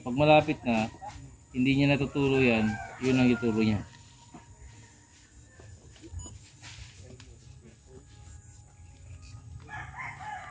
malapit na, hindi niya natuturo yan, yun ang ituro niya.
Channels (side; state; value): both; identical; correlation 1.00